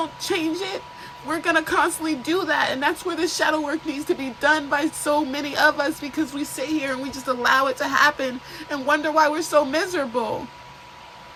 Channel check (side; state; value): both; identical; correlation 1.00